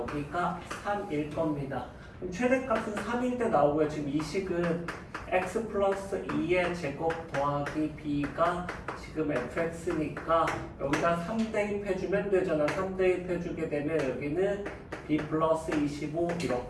3일 겁니다. 그럼 최대값은 3일 때 나오고요. 지금 이 식은 x 플러스 2의 제곱 더하기 b가 지금 fx니까 여기다 3 대입해주면 되잖아. 3 대입해주게 되면 여기는 b 플러스 25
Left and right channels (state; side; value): identical; both; correlation 1.00